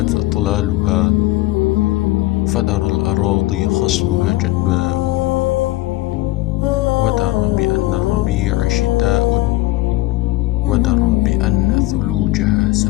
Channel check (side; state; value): right; quieter; 18.5 dB